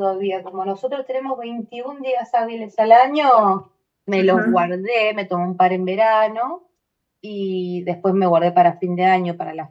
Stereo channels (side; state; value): both; identical; correlation 1.00